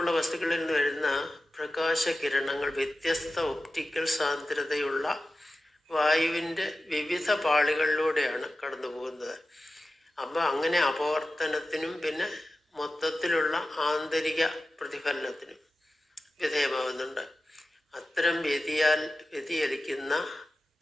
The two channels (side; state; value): both; normal; correlation 0.94